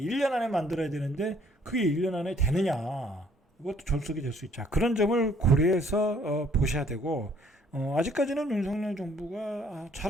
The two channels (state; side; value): normal; both; correlation 0.62